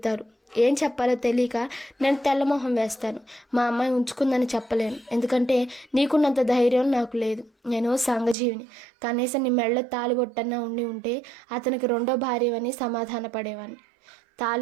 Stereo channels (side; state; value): left; drops out; at 8.3 s